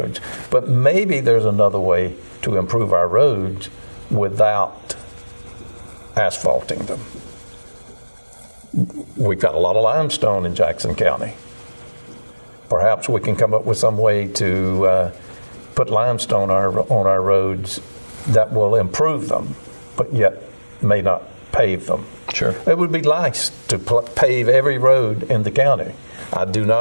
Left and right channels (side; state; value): both; inverted; correlation -1.00